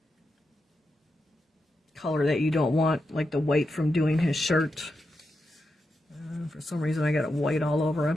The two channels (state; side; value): normal; both; correlation 0.87